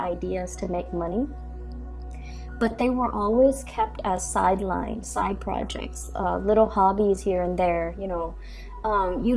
to make money, but they were always kept as sidelines, side projects, little hobbies here and there, You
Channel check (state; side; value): identical; both; correlation 1.00